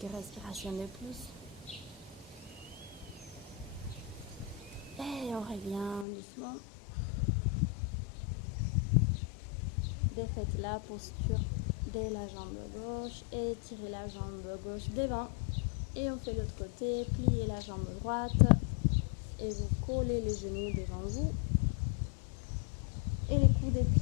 respirations de plus. Et on revient doucement. Défaites la posture de la jambe gauche et tirez la jambe gauche devant. Et on fait l'autre côté, pliez la jambe droite et vous collez les genoux devant vous. Et les coups des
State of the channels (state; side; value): drops out; right; at 6.1 s